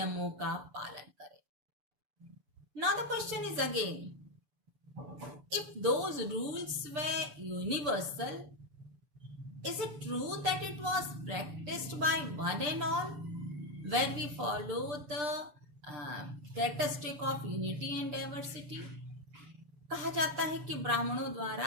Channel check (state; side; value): late; left; 6.9 ms